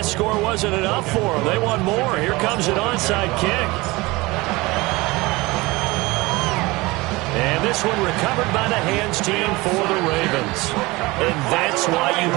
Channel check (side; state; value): left; quieter; 22.2 dB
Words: score wasn't enough for them. They want more. Here comes an onside kick. And this one recovered by the hands team for the Ravens. And that's why you